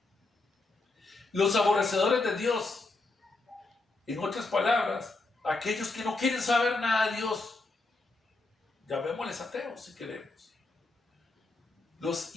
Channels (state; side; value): quieter; right; 3.3 dB